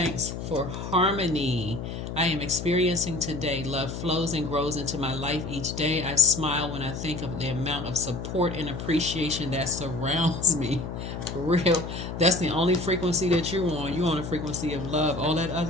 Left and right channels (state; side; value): noise; left; hum, 7 dB below the sound